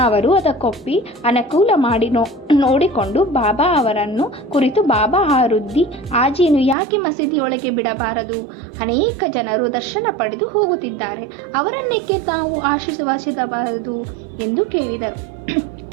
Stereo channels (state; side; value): drops out; left; at 6.8 s